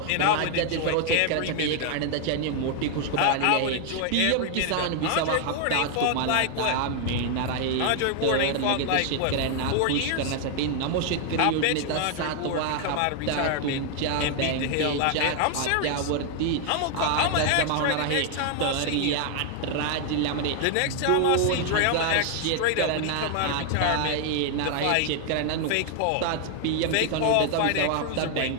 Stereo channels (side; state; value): both; different; correlation 0.00